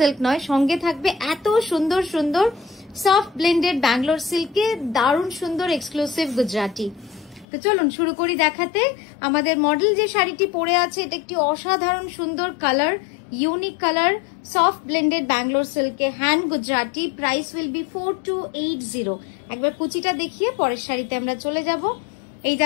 নয়, সঙ্গে থাকবে এত সুন্দর সুন্দর সফট ব্লেন্ডেড ব্যাঙ্গালোর সিল্কে দারুণ সুন্দর এক্সক্লুসিভ গুজরাটি। তো চলুন শুরু করি দেখাতে। আমাদের মডেল যে শাড়িটি পরে আছে এটা একটি অসাধারণ সুন্দর colour, unique colour, soft blended Bangalore সিল্কে hand Gujarati. Price will be 4280। একবার কুচিটা দেখিয়ে পরের শাড়িতে আমরা চলে যাব। এই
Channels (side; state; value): right; drops out; at 7.5 s